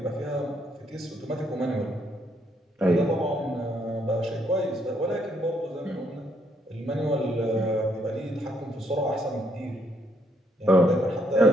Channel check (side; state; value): both; normal; correlation 0.72